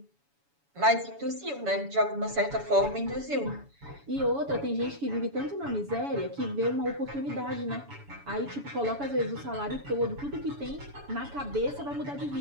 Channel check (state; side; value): late; left; 7.1 ms